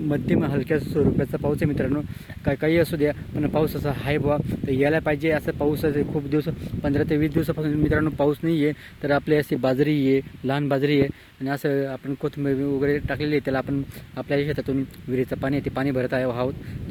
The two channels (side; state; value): both; identical; correlation 1.00